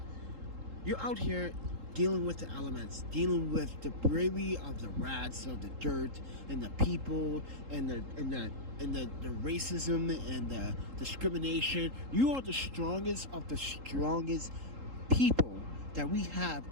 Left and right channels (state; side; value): late; left; 3.8 ms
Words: You're out here dealing with the elements, dealing with the bravery of the rats, of the dirt, and the people, and the racism and the discrimination. You are the strongest of the strongest people that we have